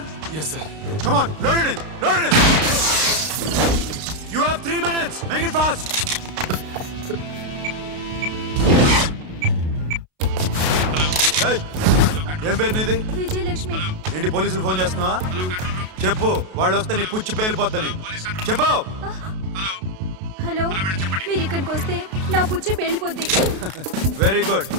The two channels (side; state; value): left; late; 32 ms